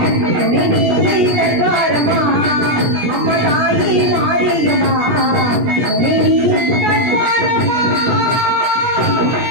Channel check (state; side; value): late; left; 17 ms